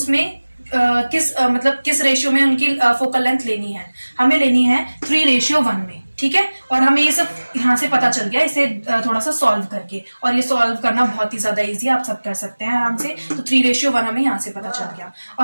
किस रेशियो में उनकी फोकल लेंथ लेनी है. हमें लेनी है 3:1 में. ठीक है, और हमें ये सब यहाँ से पता चल गया इसे थोड़ा सा सॉल्व करके, और ये सॉल्व करना बहुत ही ज्यादा इजी, आप सब कर सकते हैं आराम से. तो 3:1 हमें यहाँ से पता चल गया,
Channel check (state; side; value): inverted; both; correlation -1.00